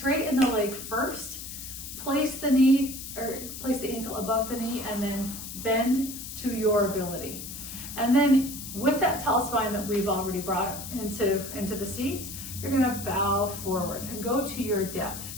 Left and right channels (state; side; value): noise; left; hiss, 10 dB below the sound